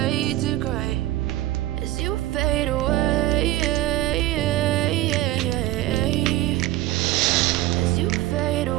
to gray as you fade away. As you fade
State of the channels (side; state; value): left; quieter; 15.8 dB